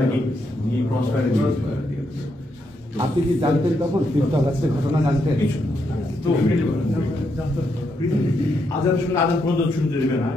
নাকি নিয়ে ক্রস ফায়ারে দিয়ে। আপনি কি জানতেন তখন 5th আগস্টের ঘটনা জানতেন? তো আজান শুনে আজান পর্যন্ত শুনতে দেবে না,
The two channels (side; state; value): both; normal; correlation 0.79